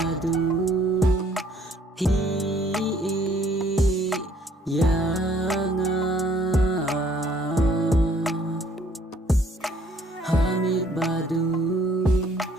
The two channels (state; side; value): normal; both; correlation 0.61